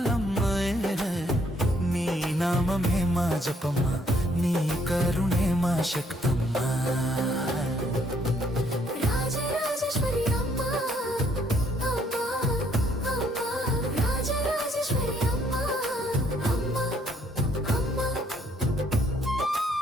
నీ నామమే మా జపమ్మ, నీ కరుణే మా శక్తమ్మ. రాజరాజేశ్వరి అమ్మ, అమ్మ, అమ్మ. రాజరాజేశ్వరి అమ్మ, అమ్మ, అమ్మ.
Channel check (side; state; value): both; normal; correlation 0.67